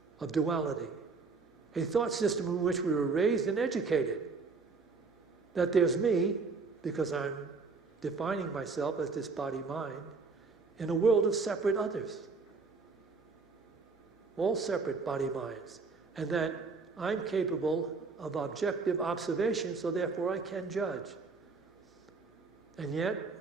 of duality, a thought system in which we were raised and educated, that there's me, because I'm defining myself as this body-mind, in a world of separate others, all separate body-minds, and that I'm capable of objective observation, so therefore I can judge. And yet,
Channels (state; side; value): quieter; left; 4.3 dB